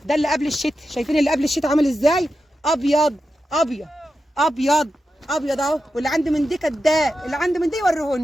ده اللي قبل الشتاء. شايفين اللي قبل الشتاء عامل ازاي؟ ابيض اهو. واللي عنده من دي كداب، اللي عنده من دي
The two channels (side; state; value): both; normal; correlation 0.90